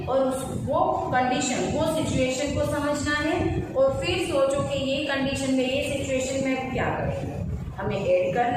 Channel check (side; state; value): both; identical; correlation 1.00